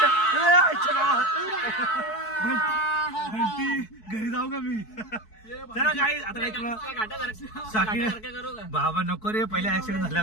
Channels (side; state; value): right; late; 4.6 ms